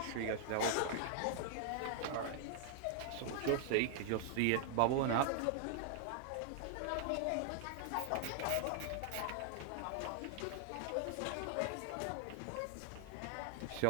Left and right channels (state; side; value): different; both; correlation 0.00